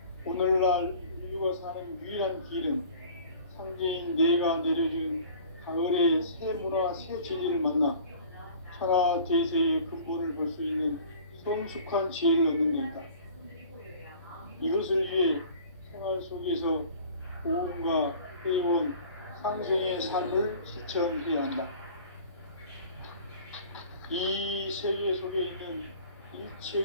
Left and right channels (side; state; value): both; inverted; correlation -0.47